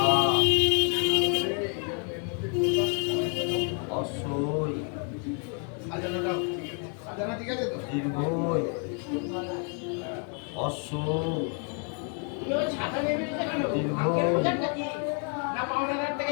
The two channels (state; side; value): quieter; right; 39.9 dB